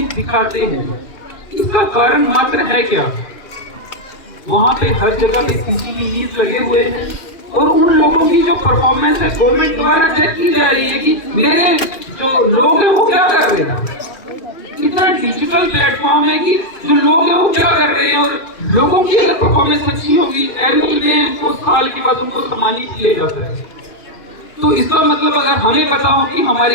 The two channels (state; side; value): late; right; 2.5 ms